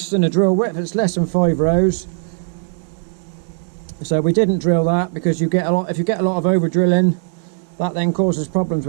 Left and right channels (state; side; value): silent; left; digital silence